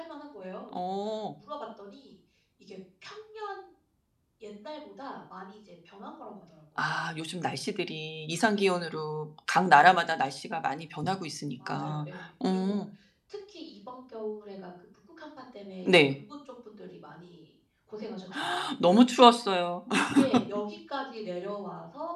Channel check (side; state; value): both; identical; correlation 1.00